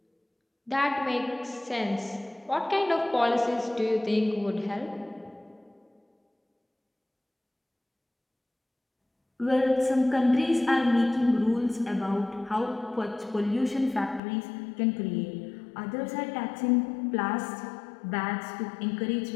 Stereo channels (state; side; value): drops out; right; at 14.2 s